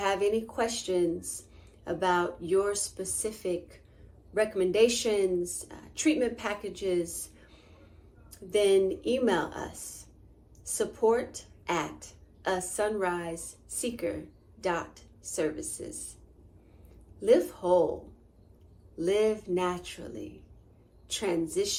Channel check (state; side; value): identical; both; correlation 1.00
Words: any questions about your specific recommendations, treatment packages, then email us, support@asunriseseeker.services. Live whole, live naturally,